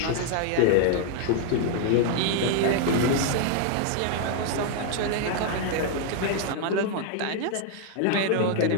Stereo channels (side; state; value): both; different; correlation 0.00